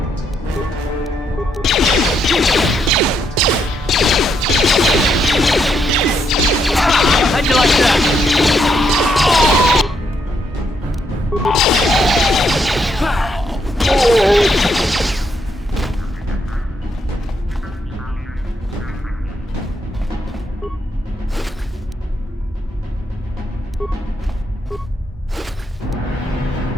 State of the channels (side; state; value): both; normal; correlation 0.76